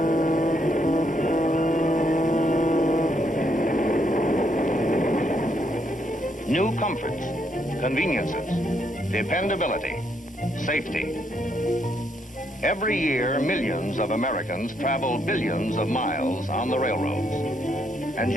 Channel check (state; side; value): normal; both; correlation 0.75